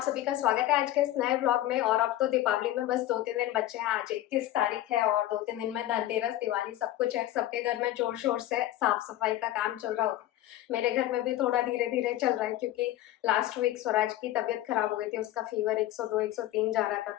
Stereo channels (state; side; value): quieter; right; 14.3 dB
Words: सभी का स्वागत है आज के इस नए व्लॉग में। और अब तो दीपावली में बस 2-3 दिन बचे हैं। आज 21 तारीख है और 2-3 दिन में धनतेरस, दिवाली सब कुछ है। सबके घर में जोर शोर से साफ सफाई का काम चल रहा होगा। मेरे घर में भी थोड़ा धीरे धीरे चल रहा है क्योंकि लास्ट वीक स्वराज की तबीयत खराब हो गई थी। उसका फीवर 102 103 जा रहा था,